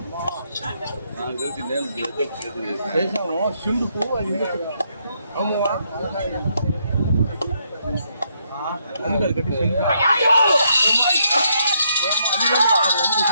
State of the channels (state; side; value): inverted; both; correlation -0.75